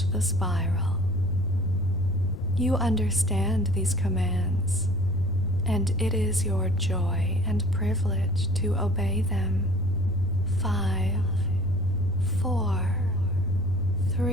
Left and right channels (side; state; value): left; noise; rumble, 10 dB below the sound